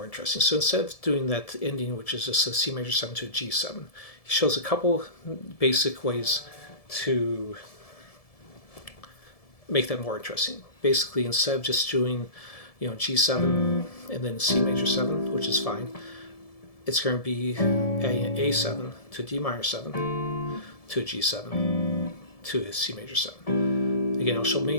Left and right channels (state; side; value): late; right; 1.7 ms